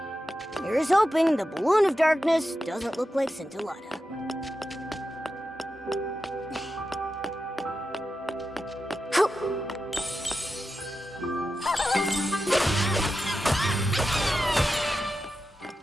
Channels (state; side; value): normal; both; correlation 0.90